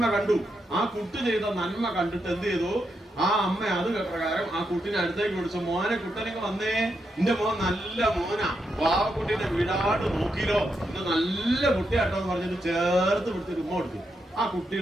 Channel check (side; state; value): both; normal; correlation 0.83